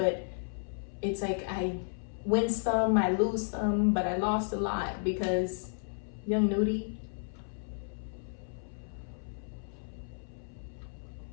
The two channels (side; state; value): right; silent; 56 dB below the other